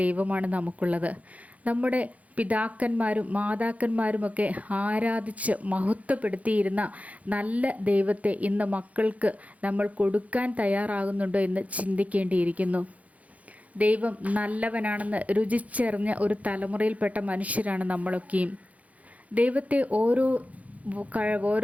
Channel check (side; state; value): left; late; 0.069 ms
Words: നമുക്കുള്ളത്. നമ്മുടെ പിതാക്കന്മാരും മാതാക്കന്മാരുമൊക്കെ ആരാധിച്ച് മഹത്വപ്പെടുത്തിയിരുന്ന നല്ല ദൈവത്തെ ഇന്ന് മക്കൾക്ക് നമ്മൾ കൊടുക്കാൻ തയ്യാറാകുന്നുണ്ടോ എന്ന് ചിന്തിക്കേണ്ടിയിരിക്കുന്നു. ദൈവം നല്ലവനാണെന്ന് രുചിച്ചറിഞ്ഞ ഒരു തലമുറയിൽപ്പെട്ട മനുഷ്യരാണ് നമ്മളൊക്കെയും. ദൈവത്തെ ഓരോ